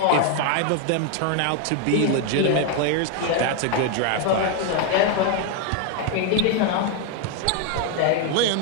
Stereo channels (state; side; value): different; both; correlation 0.01